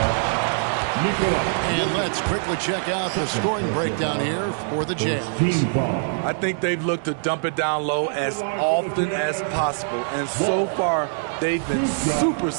And let's quickly check out the scoring breakdown here for the Jazz. I think they've looked to dump it down low as often as possible. And so far, they've been super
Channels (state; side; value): silent; left; digital silence